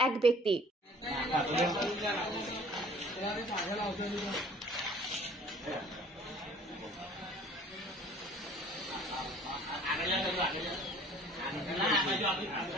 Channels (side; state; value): both; normal; correlation 0.51